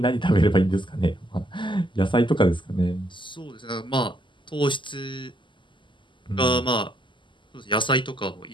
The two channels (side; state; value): right; late; 0.24 ms